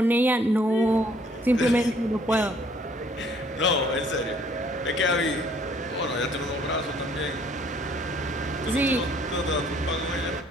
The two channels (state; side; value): normal; both; correlation 0.61